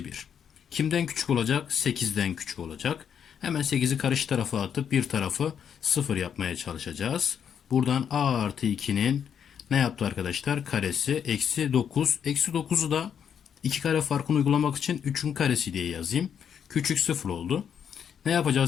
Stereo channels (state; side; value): quieter; right; 8.1 dB